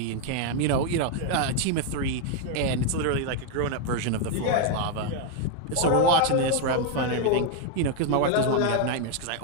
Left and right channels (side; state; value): both; different; correlation 0.00